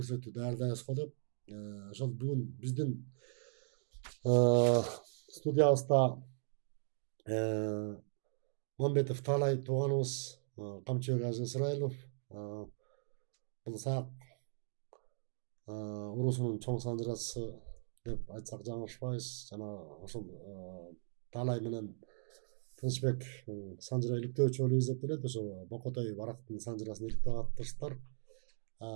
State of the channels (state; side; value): silent; left; digital silence